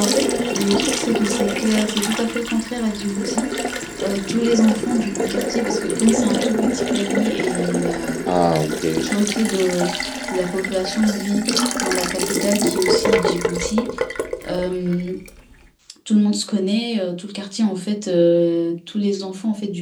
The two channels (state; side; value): identical; both; correlation 1.00